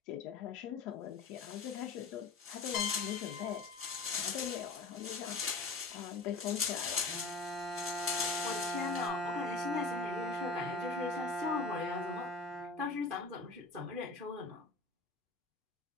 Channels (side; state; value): right; quieter; 3.8 dB